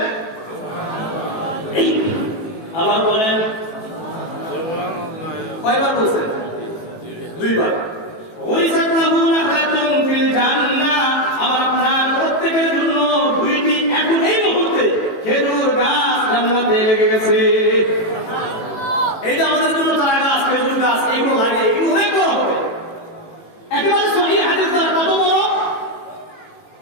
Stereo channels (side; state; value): right; late; 18 ms